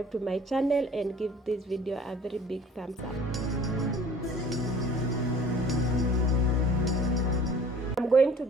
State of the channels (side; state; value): both; normal; correlation 0.49